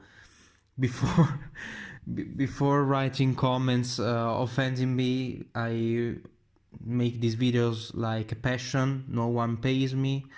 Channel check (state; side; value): identical; both; correlation 1.00